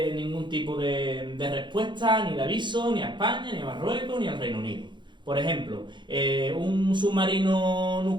ningún tipo de respuesta, ni de aviso, ni a España, ni a Marruecos, ni al Reino Unido. Por ejemplo, un submarino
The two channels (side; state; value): left; late; 0.23 ms